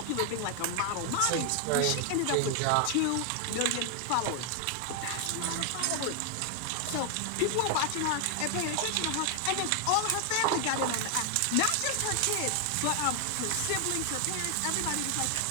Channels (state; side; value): different; both; correlation 0.00